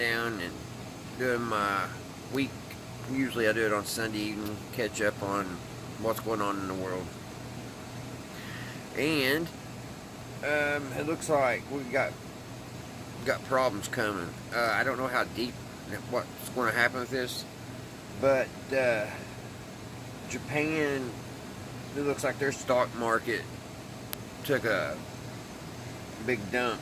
and doing my week. Usually I do it on Sunday evening, catch up on what's going on in the world. And it looks like we got problems coming. I don't know how deep, what's going to happen with this, but Japan, it looks like their stock market took a big dump.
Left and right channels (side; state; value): both; identical; correlation 1.00